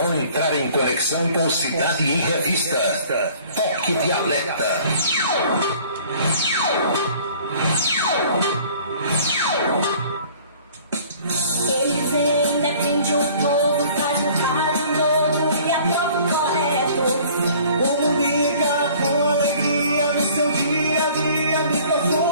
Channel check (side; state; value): both; inverted; correlation -0.52